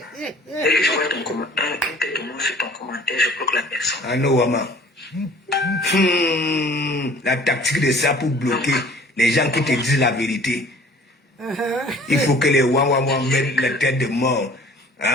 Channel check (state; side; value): normal; both; correlation 0.50